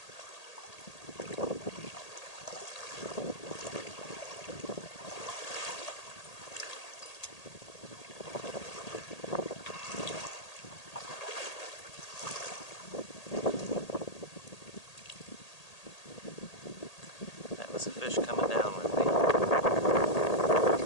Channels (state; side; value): late; right; 1.8 ms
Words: A fish coming down with me.